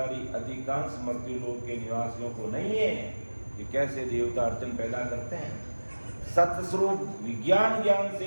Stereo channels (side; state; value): both; inverted; correlation -1.00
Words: अधिकांश मर्त्युलोक के निवासियों को नहीं है कि कैसे देवता अड़चन पैदा करते हैं। सतस्वरूप विज्ञान ज्ञान से